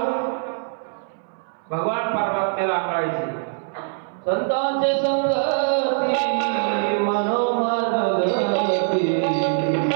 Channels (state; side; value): silent; left; 61 dB below the other